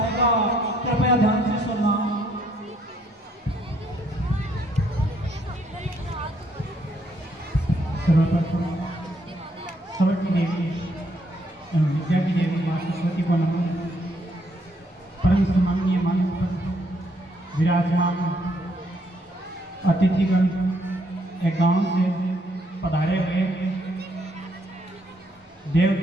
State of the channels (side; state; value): both; normal; correlation 0.70